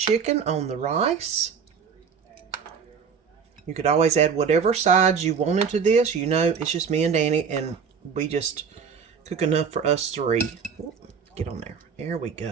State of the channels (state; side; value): quieter; left; 6.4 dB